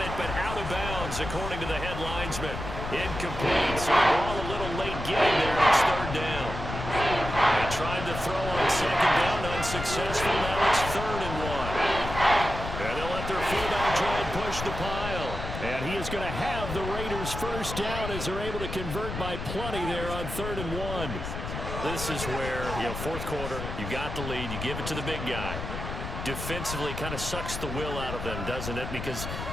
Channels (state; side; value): noise; left; rumble, 6 dB below the sound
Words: but out of bounds, according to the head linesman. Incomplete. So the ball a little late getting there, and it's third down. They tried to throw on second down, unsuccessful. Now it's 3rd and 1. And they'll let their fullback try and push the pile. And he is going to have the Raiders first down as they're able to convert by plenty there on 3rd and 1. This is where, fourth quarter, you got the lead, you give it to the big guy. Defensively kind of sucks the will out of them, doesn't it? Because